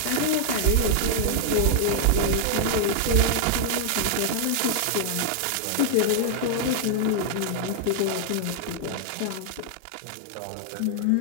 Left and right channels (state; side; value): different; both; correlation 0.00